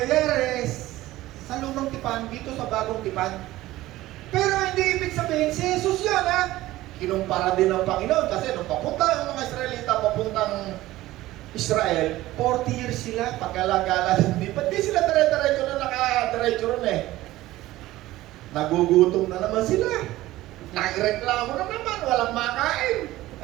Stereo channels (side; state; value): left; quieter; 16.6 dB